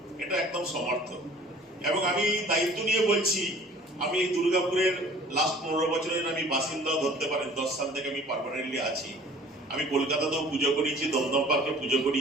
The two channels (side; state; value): both; normal; correlation 0.49